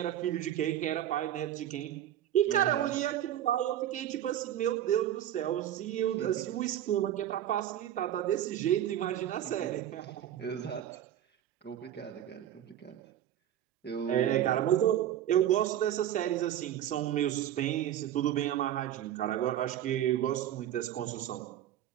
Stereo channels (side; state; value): left; quieter; 11.4 dB